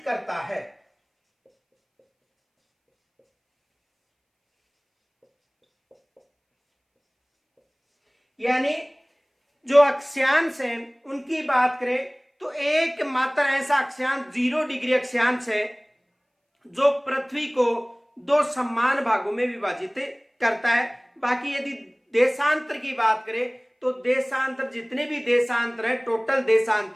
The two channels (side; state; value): both; identical; correlation 1.00